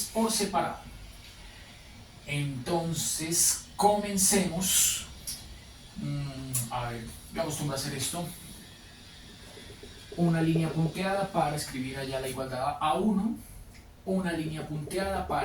por separado. Entonces, comencemos. A ver, yo acostumbro a hacer esto. Una línea punteada para escribir allá la igualdad a 1. Una línea punteada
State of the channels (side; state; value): both; identical; correlation 1.00